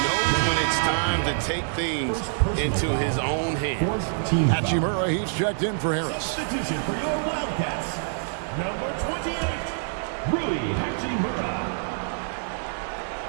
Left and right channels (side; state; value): left; silent; digital silence